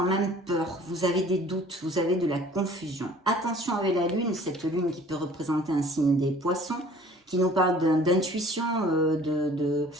même peur, vous avez des doutes, vous avez de la confusion. Attention avec la lune, cette lune qui peut représenter un signe des poissons, qui nous parle d'intuition,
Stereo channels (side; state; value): both; normal; correlation 0.51